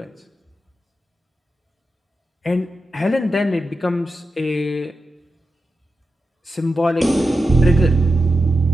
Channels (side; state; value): both; normal; correlation 0.90